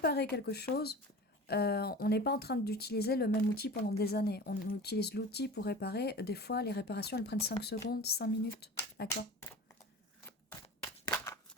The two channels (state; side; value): normal; both; correlation 0.36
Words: quelque chose, on n'est pas en train d'utiliser le même outil pendant des années. On utilise l'outil pour réparer. Des fois, les réparations, elles prennent 5 secondes, 5 minutes. D'accord